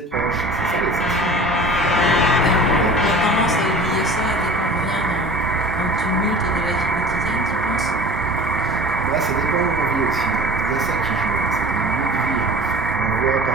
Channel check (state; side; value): normal; both; correlation 0.42